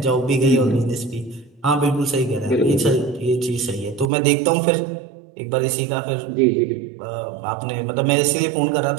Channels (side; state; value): left; drops out; at 4.0 s